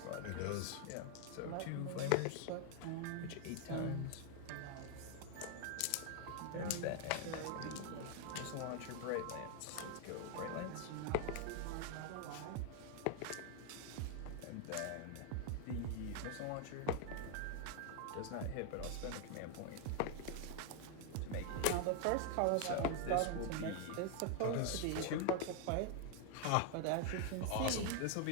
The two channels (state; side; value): different; both; correlation 0.00